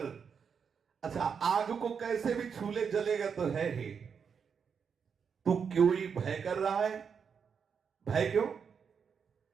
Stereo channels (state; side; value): quieter; left; 6.5 dB